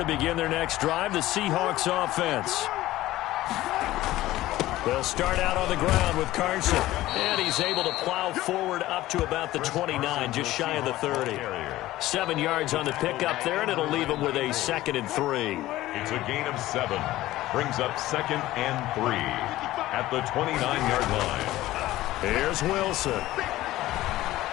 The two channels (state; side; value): quieter; right; 16.1 dB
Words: begin their next drive, the Seahawks offense. They'll start out on the ground with Carson. And he's able to plow forward up to about the 29, just shy of the 30. 7 yards on the pickup there, and it'll leave him with a 2nd and 3. It's a gain of 7. Brings up 2nd and 3 at the 29-yard line. Here's Wilson.